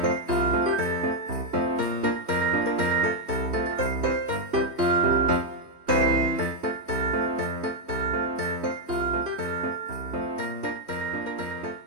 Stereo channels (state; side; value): late; left; 3.2 ms